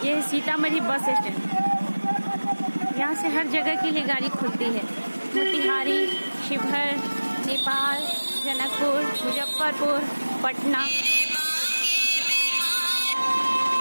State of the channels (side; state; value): both; inverted; correlation -1.00